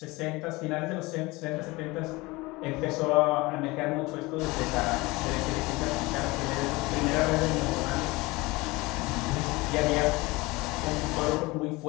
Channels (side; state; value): right; quieter; 22.6 dB